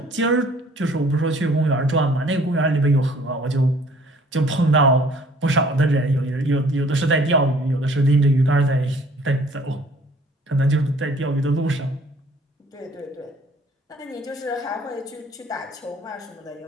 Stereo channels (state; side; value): normal; both; correlation 0.56